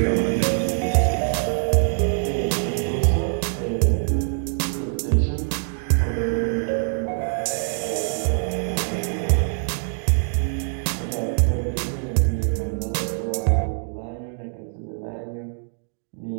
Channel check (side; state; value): left; silent; digital silence